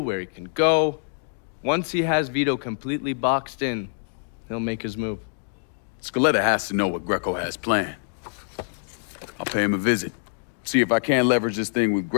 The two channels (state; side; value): silent; right; digital silence